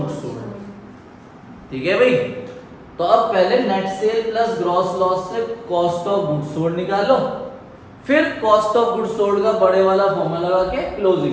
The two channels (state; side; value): identical; both; correlation 1.00